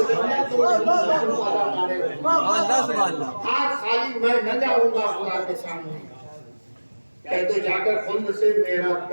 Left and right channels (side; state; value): both; inverted; correlation -1.00